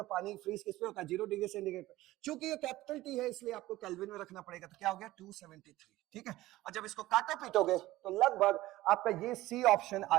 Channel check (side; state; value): left; quieter; 17.0 dB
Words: पानी फ्रीज किस पे होता है? 0 डिग्री सेंटीग्रेड पे। चूंकि ये कैपिटल टी है इसलिए आपको केल्विन में रखना पड़ेगा, तो क्या हो गया? 273। ठीक है, और जब इसको काटो पीटोगे तो लगभग आपका ये सी ऑप्शन